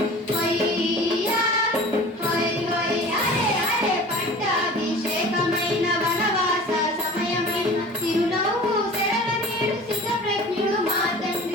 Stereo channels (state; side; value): normal; both; correlation 0.41